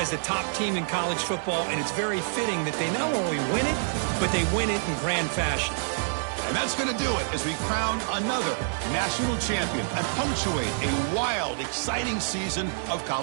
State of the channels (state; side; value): silent; left; digital silence